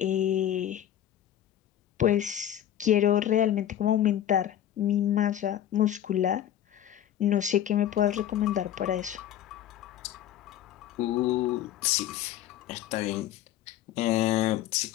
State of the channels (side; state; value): right; quieter; 11.3 dB